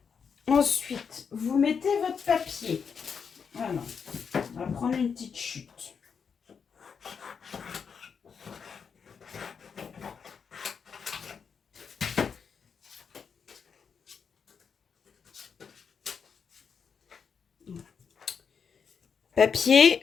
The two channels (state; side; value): quieter; right; 6.4 dB